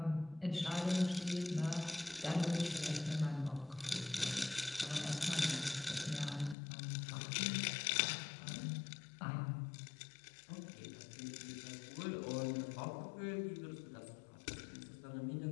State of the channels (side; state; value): right; drops out; at 6.6 s